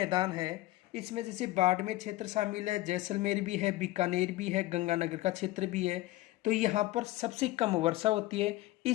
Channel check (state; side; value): quieter; right; 17.4 dB